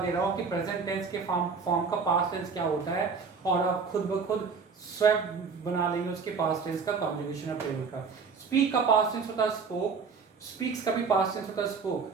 रहा हूँ कि प्रेजेंट टेंस के फॉर्म का पास्ट टेंस क्या होता है, और आप खुद ब खुद स्वयं बना लेंगे उसके पास्ट टेंस का कॉन्जुगेशन ऑफ टेबल का। स्पीक का पास्ट टेंस होता है स्पोक, स्पीक्स का भी पास्ट टेंस होता है स्पोक,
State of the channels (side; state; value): left; quieter; 5.3 dB